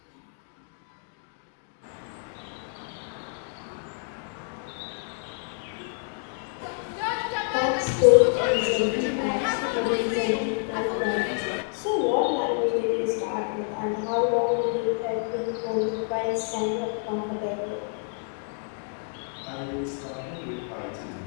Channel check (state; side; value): silent; right; 55 dB below the other